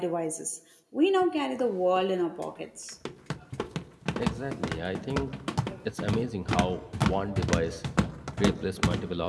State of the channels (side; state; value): both; identical; correlation 1.00